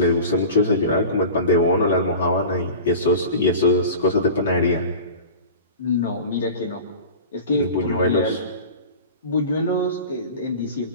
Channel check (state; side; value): inverted; both; correlation -0.36